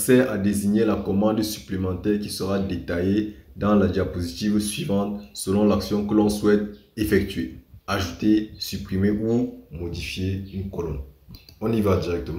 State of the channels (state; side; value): identical; both; correlation 1.00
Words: à désigner la commande supplémentaire qui sera détaillée dans la diapositive suivante selon l'action que l'on souhaite effectuer. Ajouter, supprimer ou modifier une colonne. On y va